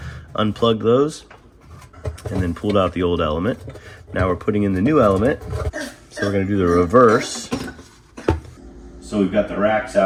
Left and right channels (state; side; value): identical; both; correlation 1.00